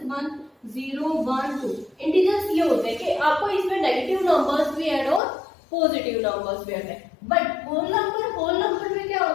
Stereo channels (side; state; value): right; drops out; at 5.2 s